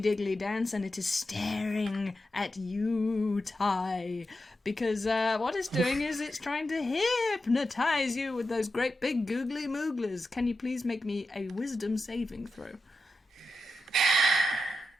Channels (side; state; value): both; normal; correlation 0.90